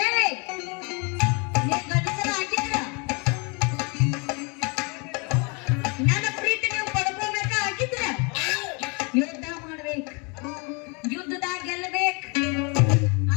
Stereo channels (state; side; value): quieter; right; 31.9 dB